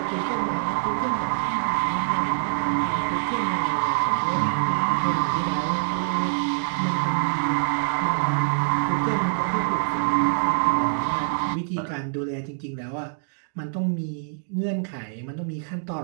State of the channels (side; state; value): left; silent; digital silence